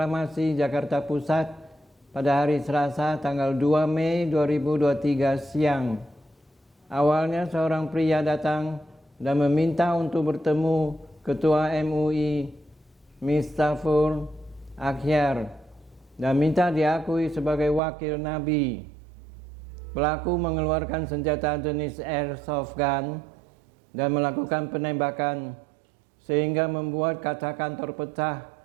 Jakarta Pusat pada hari Selasa tanggal 2 Mei 2023 siang. Awalnya seorang pria datang dan meminta untuk bertemu Ketua MUI, Miftahul Akhyar, dan minta diakui sebagai wakil Nabi. Pelaku mengeluarkan senjata jenis airsoft gun dan melakukan penembakan sehingga membuat kaca kantor pecah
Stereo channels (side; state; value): left; drops out; at 17.8 s